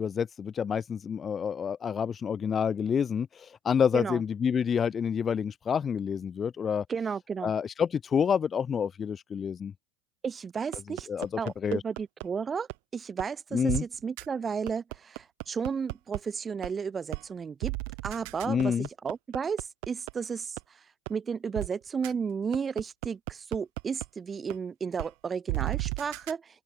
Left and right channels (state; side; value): normal; both; correlation 0.73